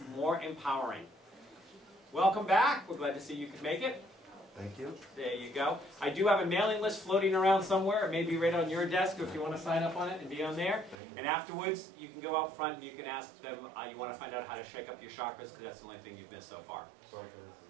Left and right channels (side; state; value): left; drops out; at 11.0 s